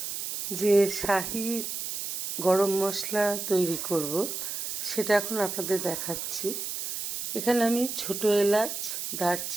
যে শাহি গরম মশলা তৈরি করব সেটা এখন আপনাদের দেখাচ্ছি। এখানে আমি ছোট এলাচ,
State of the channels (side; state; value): right; noise; hiss, 5 dB below the sound